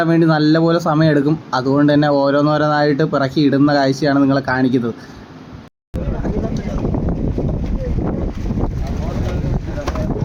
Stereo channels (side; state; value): both; identical; correlation 1.00